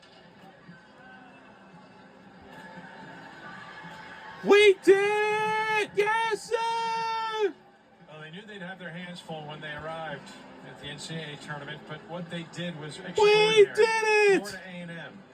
We did it! Yes, sir! Well, they knew they'd have their hands full when they arrived at the NCAA tournament, but what they did was extraordinary. We did it! Florida A&M,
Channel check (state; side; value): identical; both; correlation 1.00